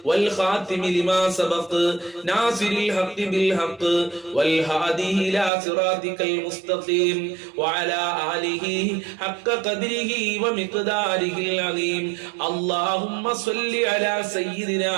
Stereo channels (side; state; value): left; drops out; at 5.5 s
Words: والخاتم لما سبق ناصر الحق بالحق والهادي إلى صراطك المستقيم وعلى آله حق قدره ومقداره العظيم. اللهم صل على سيدنا